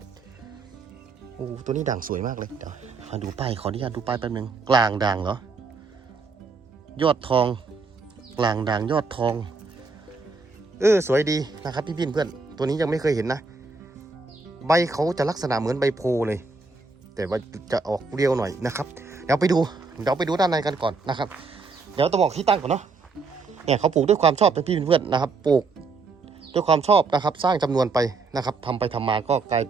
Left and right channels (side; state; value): left; quieter; 4.2 dB